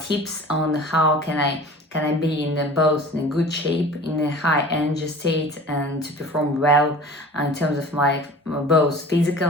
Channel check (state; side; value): normal; both; correlation 0.41